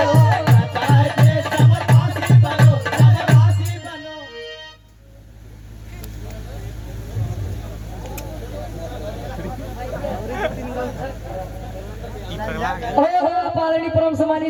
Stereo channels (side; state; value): both; identical; correlation 1.00